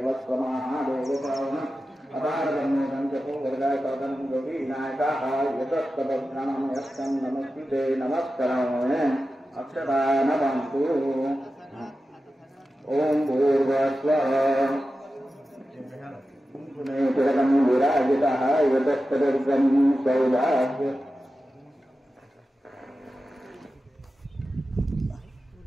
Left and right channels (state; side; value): normal; both; correlation 0.93